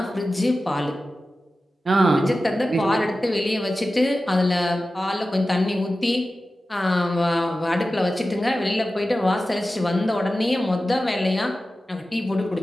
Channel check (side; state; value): both; normal; correlation 0.94